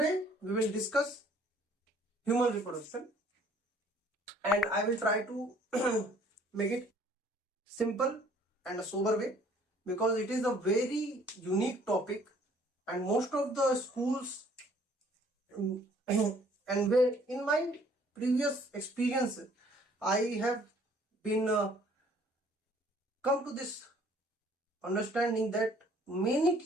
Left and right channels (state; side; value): normal; both; correlation 0.58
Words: we will discuss human reproduction and I will try to make it simple and a sober way because it is a very unique topic and most of the schools and where in my previous experience I have been come to this understanding that many